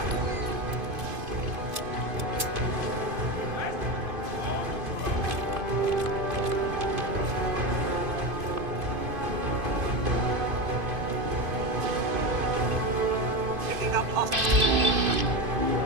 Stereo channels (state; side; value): late; left; 2.5 ms